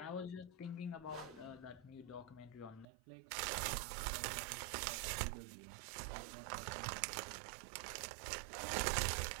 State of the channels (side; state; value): left; drops out; at 2.9 s